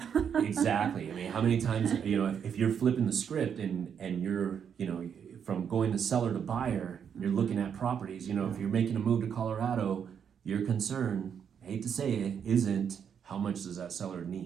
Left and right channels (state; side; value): quieter; left; 7.7 dB